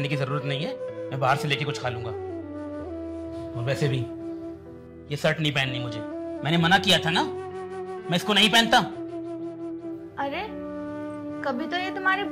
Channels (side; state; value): both; identical; correlation 1.00